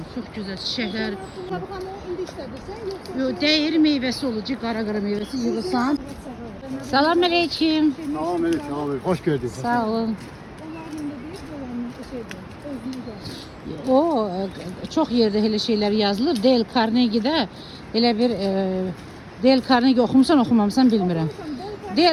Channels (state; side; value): identical; both; correlation 1.00